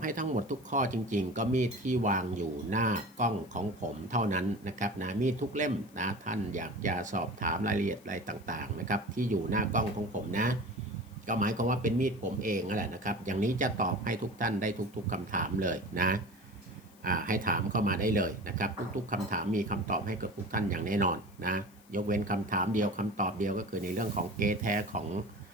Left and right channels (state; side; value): noise; left; hiss, 28 dB below the sound